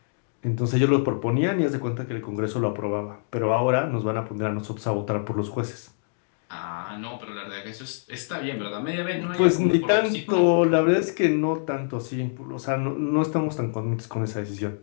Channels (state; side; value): silent; right; digital silence